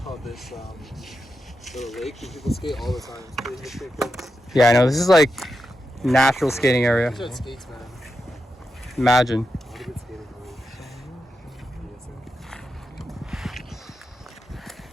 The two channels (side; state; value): both; normal; correlation 0.88